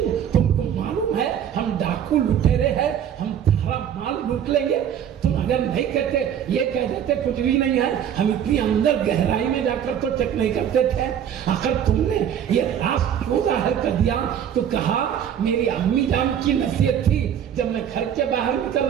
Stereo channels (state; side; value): quieter; left; 9.2 dB